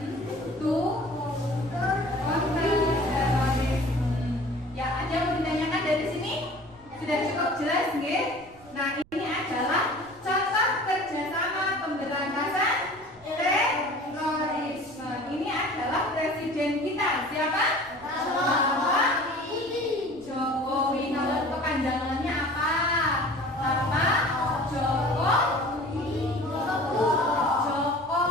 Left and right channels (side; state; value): right; noise; rumble, 26 dB below the sound